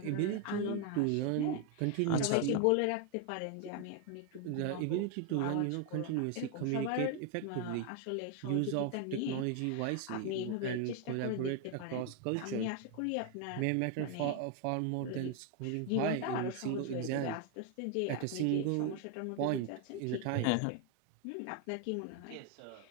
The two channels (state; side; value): different; both; correlation 0.01